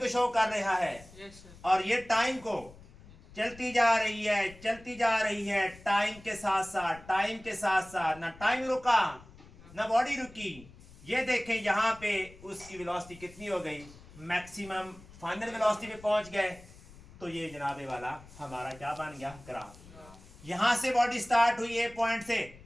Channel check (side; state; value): left; noise; rumble, 21 dB below the sound